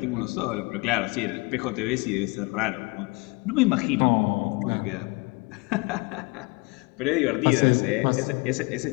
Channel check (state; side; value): quieter; right; 28.1 dB